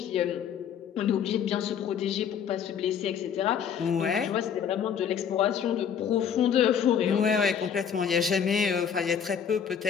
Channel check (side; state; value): right; quieter; 7.9 dB